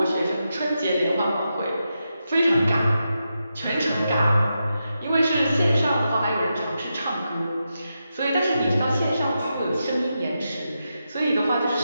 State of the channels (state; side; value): inverted; both; correlation -0.87